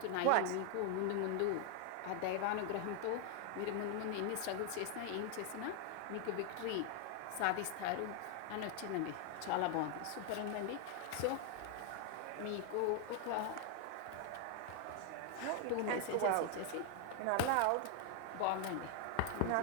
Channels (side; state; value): both; different; correlation 0.00